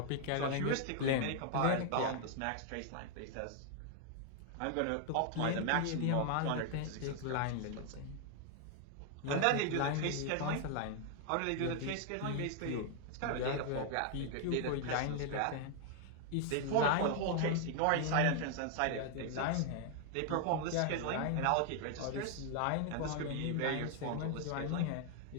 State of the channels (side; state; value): both; different; correlation 0.00